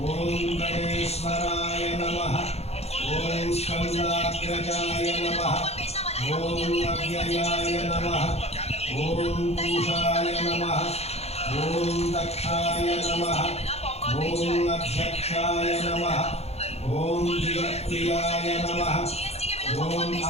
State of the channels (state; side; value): late; right; 0.30 ms